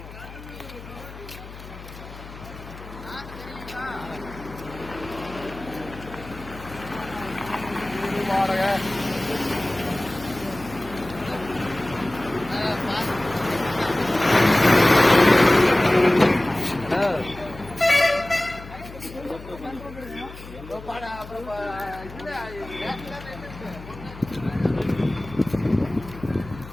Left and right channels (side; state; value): left; noise; hum, 15 dB below the sound